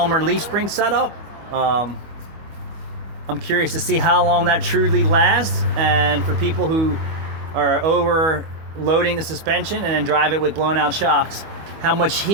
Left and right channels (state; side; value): late; left; 25 ms